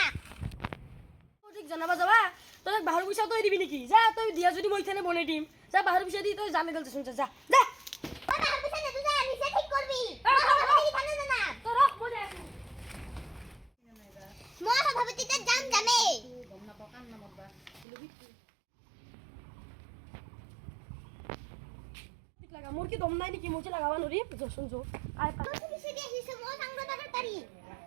ঠিক জনাবা যাবা তই বাহিৰ পইচা তই দিবি নেকি যা তই দিয়া যদি মই ইথানে বনাই দিম যা বাহিৰ পইচা দি তই জানে গেল শুন যা যা ঐ বাহিৰ পিছে নেতু যা নিজে ঠিক কৰবি সভাপতি ইথানে জানা তই ৰখ মই যাই আছো মই সভাপতিতে যাম যামে গম নাপাও কান নামবা ঠিক লাগা মোৰ কি দম নাই নেকি মই লাগাবা নৰি জসন জো আই পা তুই পিছে দি আহিছ মই সাংগ দাদা তাৰি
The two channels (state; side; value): drops out; left; at 17.9 s